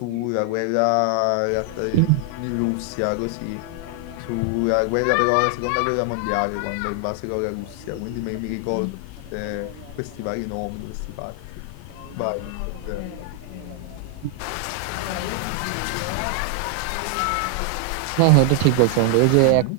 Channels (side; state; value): both; different; correlation 0.00